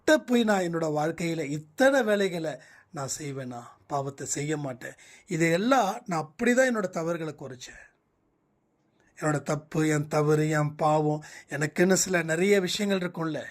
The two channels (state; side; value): identical; both; correlation 1.00